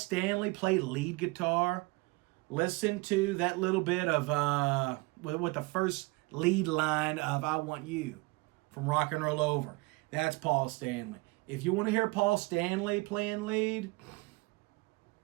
play lead guitar, listen to that little bit of, with the first lead line of I Want You. from Rock and Roll Over. That's Paul Stanley. If you want to hear Paul Stanley playing lead,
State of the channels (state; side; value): quieter; left; 24.8 dB